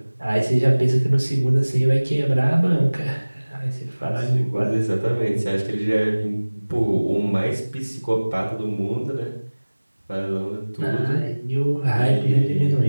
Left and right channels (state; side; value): inverted; both; correlation -1.00